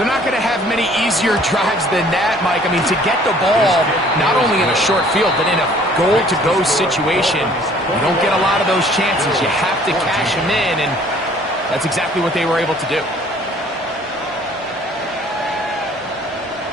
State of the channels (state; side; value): normal; both; correlation 0.55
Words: not going to have many easier drives than that, Mike. I mean, to get the ball, not only in a short field, but in a goal-to-go situation, you don't get a lot of those chances. You have to cash them in, and that's exactly what they were able to do.